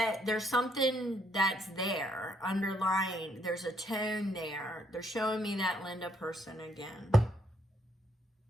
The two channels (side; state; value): both; normal; correlation 0.71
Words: there's something that's there, underlying. There's a tone there. They're showing me that Linda person again.